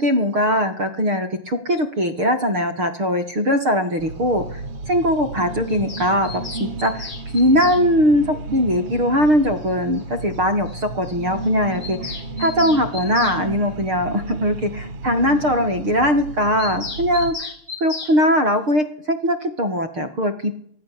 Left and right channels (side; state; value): left; late; 6.6 ms